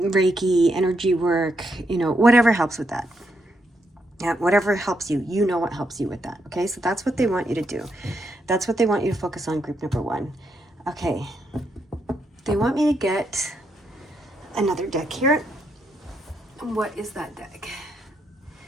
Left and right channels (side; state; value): both; normal; correlation 0.79